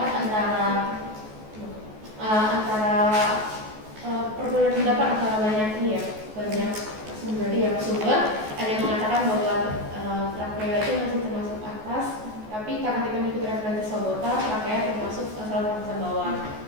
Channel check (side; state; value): left; late; 14 ms